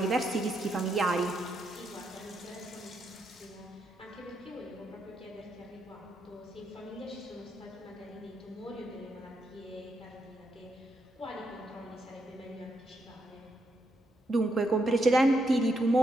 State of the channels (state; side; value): normal; both; correlation 0.80